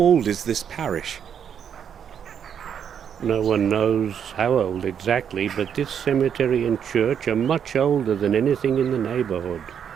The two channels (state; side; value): quieter; left; 8.2 dB